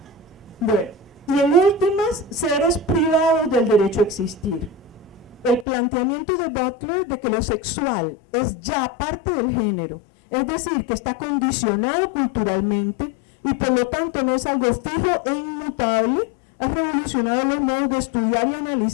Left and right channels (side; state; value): right; drops out; at 5.7 s